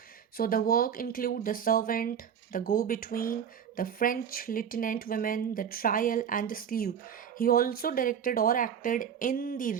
so the work include The Servant, The Go-Between, The French Lieutenant Women, The Trial, and The Sleuth. He also directed or acted in the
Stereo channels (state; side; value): quieter; left; 8.0 dB